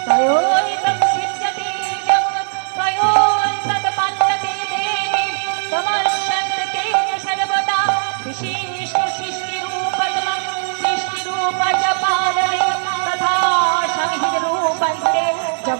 তয়োইতং সিদ্ধ্যতি জগৎ তয়োস্তৎপন্নতে দেবী তমস্যন্তে সর্বদা বিশিষ্ট সৃষ্টিরূপতমং সৃষ্টিরূপচ পালনে তথা সংহিতরূপন্তে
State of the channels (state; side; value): silent; left; 67 dB below the other